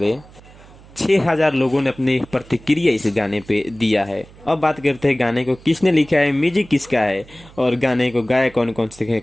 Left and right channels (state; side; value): noise; right; hum, 23 dB below the sound